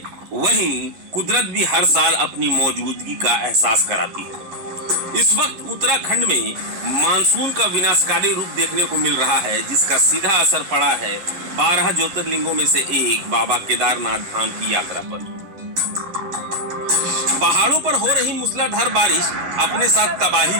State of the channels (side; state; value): left; late; 11 ms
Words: वहीं कुदरत भी हर साल अपनी मौजूदगी का एहसास कराती है। इस वक्त उत्तराखंड में मानसून का विनाशकारी रूप देखने को मिल रहा है, जिसका सीधा असर पड़ा है 12 ज्योतिर्लिंगों में से एक बाबा केदारनाथ धाम की यात्रा पर। पहाड़ों पर हो रही मूसलाधार बारिश अपने साथ तबाही